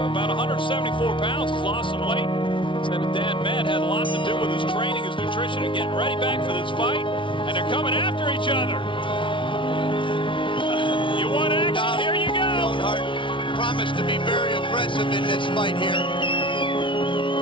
about 174 pounds. He's lost some weight. Said his dad, Matt, had a lot to do with his training, his nutrition, and getting ready back for this fight. And they're coming after each other. You want action? Here you go. Leonard promised to be very aggressive in this fight here.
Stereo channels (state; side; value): late; right; 0.25 ms